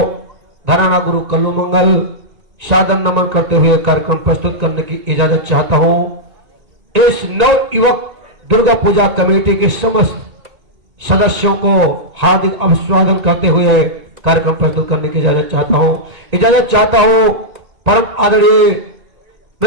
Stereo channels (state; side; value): late; left; 1.9 ms